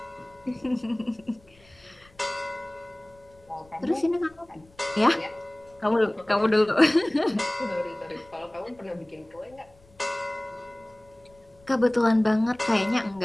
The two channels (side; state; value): left; noise; rumble, 28 dB below the sound